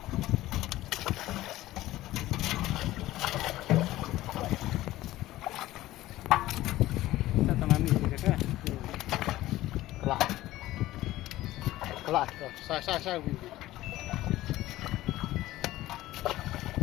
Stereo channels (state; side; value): quieter; right; 16.1 dB